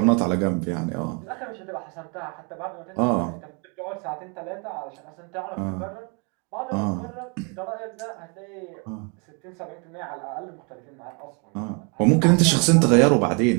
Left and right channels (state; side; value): quieter; left; 34.9 dB